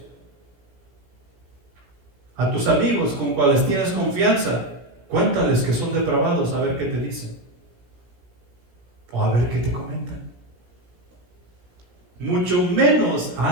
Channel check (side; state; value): left; late; 17 ms